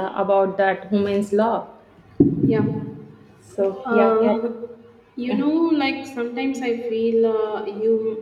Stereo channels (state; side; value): identical; both; correlation 1.00